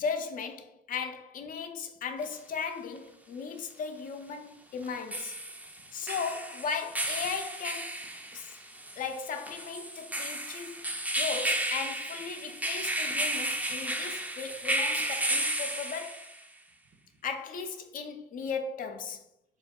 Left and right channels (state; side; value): normal; both; correlation 0.07